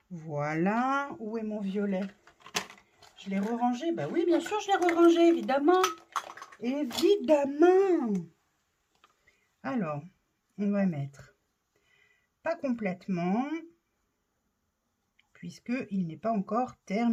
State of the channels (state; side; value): identical; both; correlation 1.00